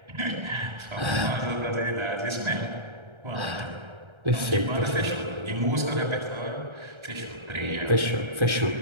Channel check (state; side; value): late; left; 1.3 ms